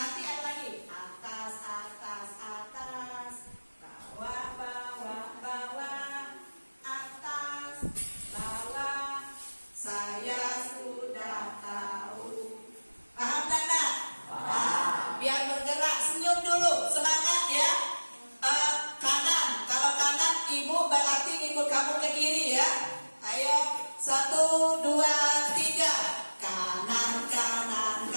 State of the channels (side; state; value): both; inverted; correlation -1.00